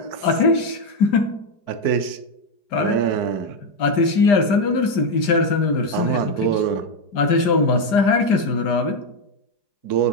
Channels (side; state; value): right; late; 5.0 ms